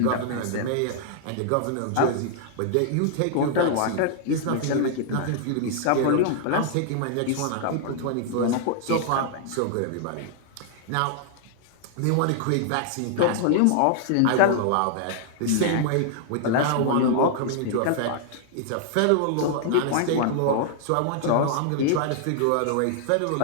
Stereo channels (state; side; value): different; both; correlation -0.01